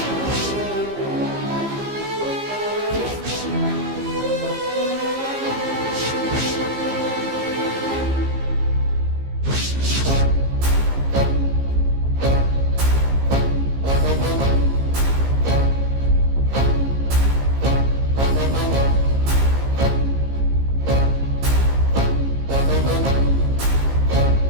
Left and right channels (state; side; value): late; left; 15 ms